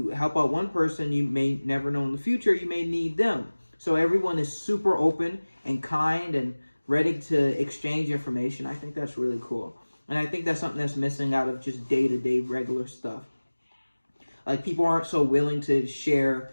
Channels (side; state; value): both; inverted; correlation -1.00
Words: help out one person, you may never know in the future, you may need them. So everyone is super open and kind and ready to exchange information. I think that's really cool. And I think that's something that's missing out of just day-to-day regular stuff. Like people aren't so willing to share